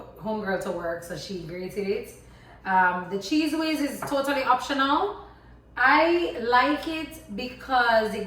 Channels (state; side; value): identical; both; correlation 1.00